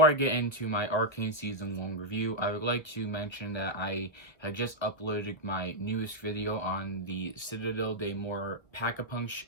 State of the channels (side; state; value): right; late; 1.0 ms